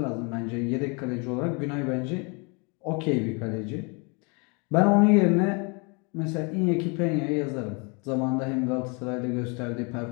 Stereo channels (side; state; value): right; quieter; 32.3 dB